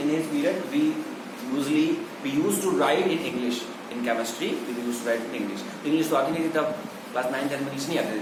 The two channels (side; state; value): both; identical; correlation 1.00